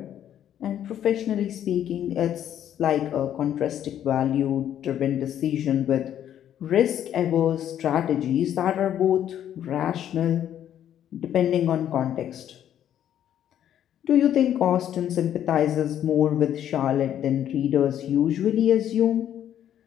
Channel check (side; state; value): right; quieter; 10.5 dB